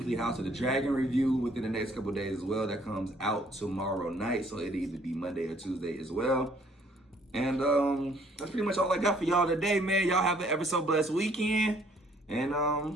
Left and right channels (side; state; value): both; normal; correlation 0.62